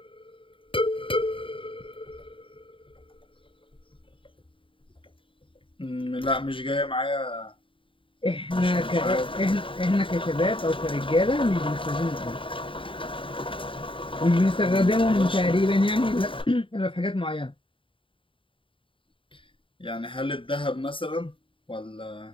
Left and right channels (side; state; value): right; late; 0.25 ms